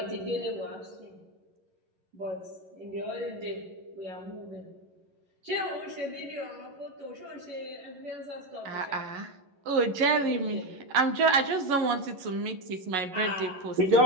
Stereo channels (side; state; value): left; late; 11 ms